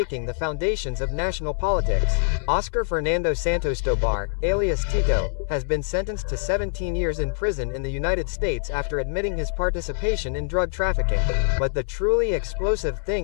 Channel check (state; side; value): silent; right; 62 dB below the other